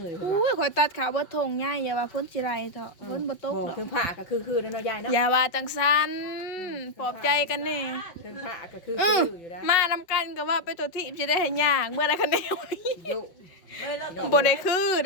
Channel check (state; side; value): late; right; 5.4 ms